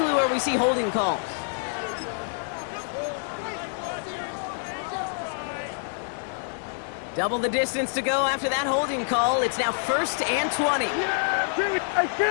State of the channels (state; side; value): silent; right; 60 dB below the other